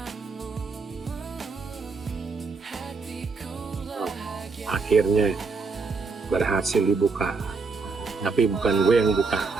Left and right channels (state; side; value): quieter; left; 4.4 dB